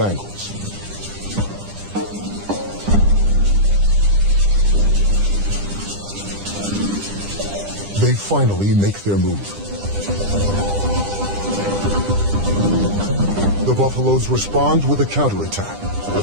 angles. They finally make their move. The buffaloes respond with a counterattack.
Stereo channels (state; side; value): late; left; 10 ms